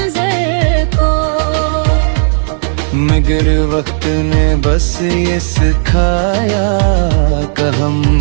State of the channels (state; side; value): silent; left; digital silence